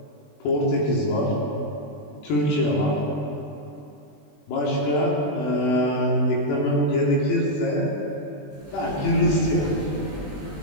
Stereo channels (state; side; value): late; right; 20 ms